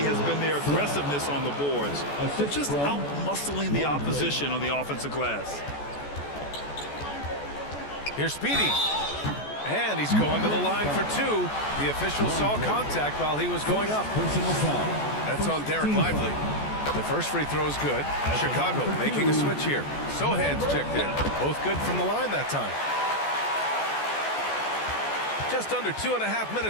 has been their aggressiveness on the boards. They're just out-muscling the opposition on the offensive glass. Here's Speedy. And he's going to the line for 2. The official saw contact while he was going up. Personal foul. That's on Derek Lively. The first free throw is good. Chicago making a switch here. Sohan's checked in. Both good from the line that time. Just under 2.5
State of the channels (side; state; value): right; late; 14 ms